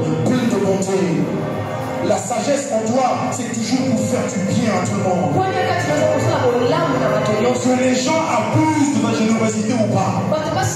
Pleine de bonté. La sagesse en toi, c'est toujours pour faire du bien à tout le monde. Que les gens abusent de ta générosité ou pas,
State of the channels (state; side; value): identical; both; correlation 1.00